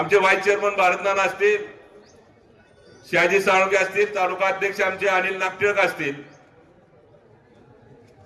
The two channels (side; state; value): both; identical; correlation 1.00